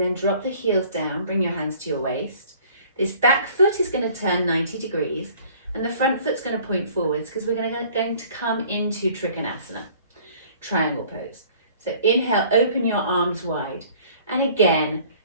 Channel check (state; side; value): inverted; both; correlation -0.53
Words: drop the heels down, bring your hands to your waist. This back foot is going to turn 90 degrees and the front foot's going to point forwards because we're going to come into Trikonasana, triangle pose. So inhale, open your arms wide. And again,